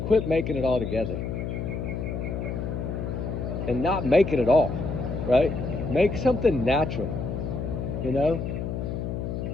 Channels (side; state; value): left; noise; hum, 4 dB below the sound